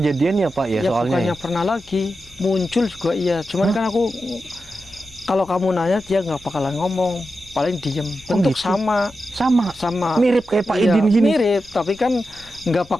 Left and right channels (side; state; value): left; noise; rumble, 26 dB below the sound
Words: ya Pak ya, Ya soalnya. bukannya pernah lagi muncul juga iya. Cuman kan aku kalau kamu nanya dia nggak bakalan ngomong. Paling diem. Bentuk gitu? sama. Sama. Mirip kayak Pak Iya, Idin gini. mirip, tapi kan nggak